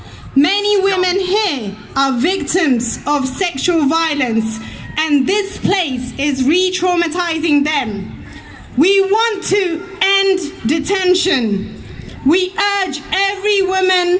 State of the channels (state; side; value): identical; both; correlation 1.00